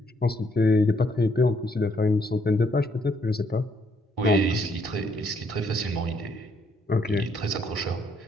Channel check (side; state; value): both; normal; correlation 0.70